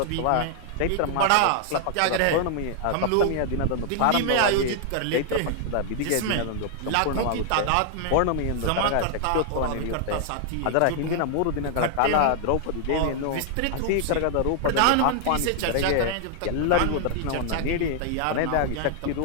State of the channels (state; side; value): different; both; correlation 0.00